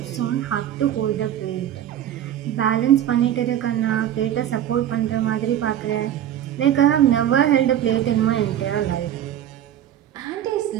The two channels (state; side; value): quieter; left; 10.9 dB